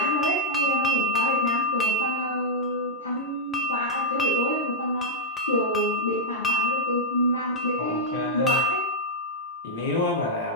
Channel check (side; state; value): both; normal; correlation -0.04